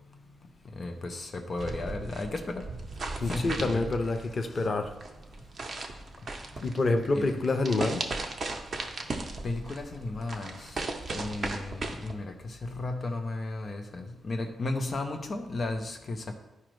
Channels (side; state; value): both; normal; correlation 0.88